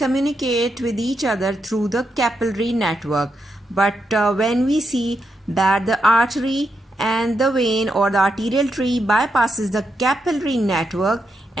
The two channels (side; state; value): both; normal; correlation 0.83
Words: with each other through the capillary network. But when we see that the artery and the vein or the arterial tree bypasses the capillary network